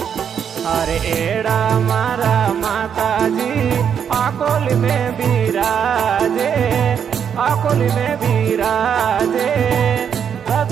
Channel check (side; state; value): left; quieter; 7.9 dB